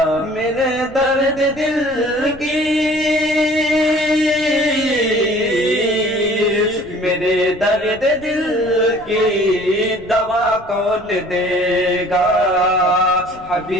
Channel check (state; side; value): noise; left; rumble, 21 dB below the sound